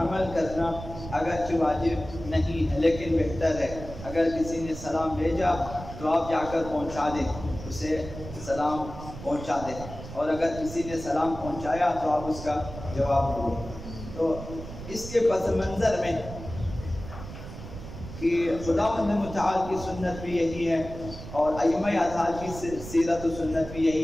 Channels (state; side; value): noise; right; rumble, 11 dB below the sound